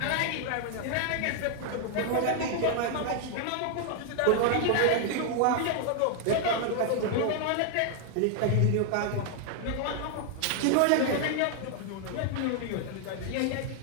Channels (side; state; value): both; different; correlation 0.00